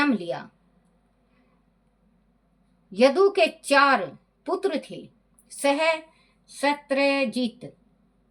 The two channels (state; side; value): identical; both; correlation 1.00